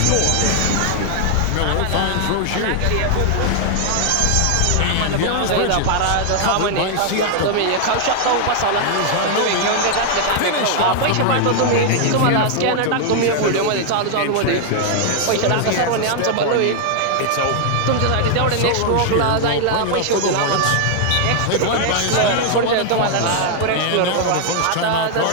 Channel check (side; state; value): both; different; correlation 0.00